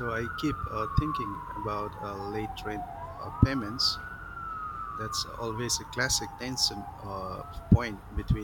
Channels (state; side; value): identical; both; correlation 1.00